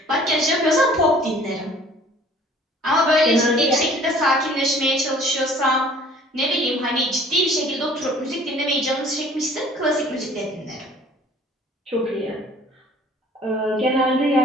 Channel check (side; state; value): both; normal; correlation 0.52